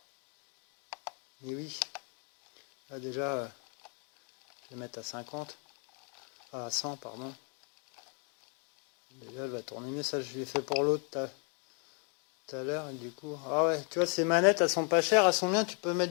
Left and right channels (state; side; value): quieter; right; 38.7 dB